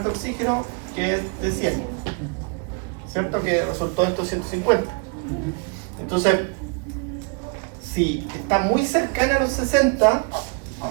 de oxígeno, que es de 100, ¿cierto? Que resultó en 250. Entonces, si está muy cercana a los 60,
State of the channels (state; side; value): quieter; left; 35.9 dB